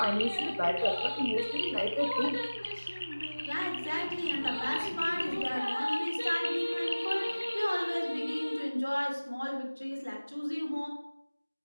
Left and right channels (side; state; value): both; inverted; correlation -1.00